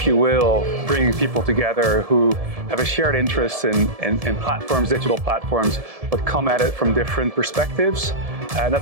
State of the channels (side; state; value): left; late; 1.7 ms